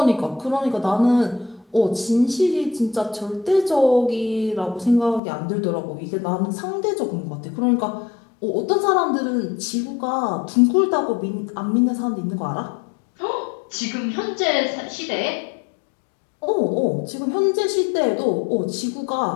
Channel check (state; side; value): drops out; right; at 5.2 s